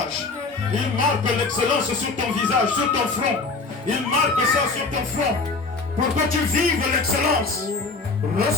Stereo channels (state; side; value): quieter; right; 3.9 dB